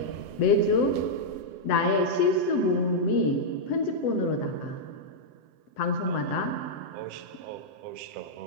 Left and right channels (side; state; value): right; late; 7.8 ms